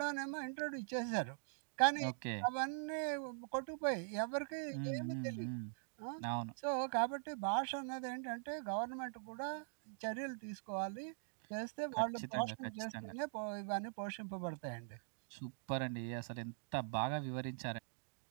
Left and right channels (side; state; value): left; silent; digital silence